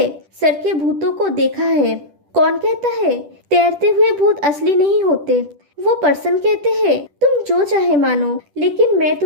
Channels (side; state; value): left; late; 10 ms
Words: सर के भूतों को देखा है। कौन कहता है तैरते हुए भूत असली नहीं होते। वो पर्सन कहते हैं तुम जो चाहे मानो, लेकिन मैं